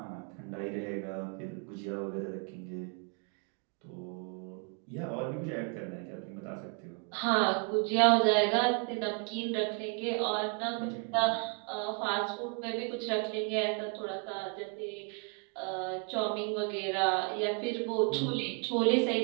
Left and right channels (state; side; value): quieter; left; 39.0 dB